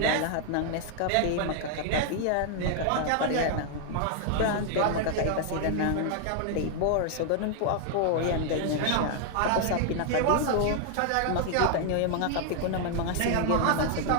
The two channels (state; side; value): different; both; correlation 0.00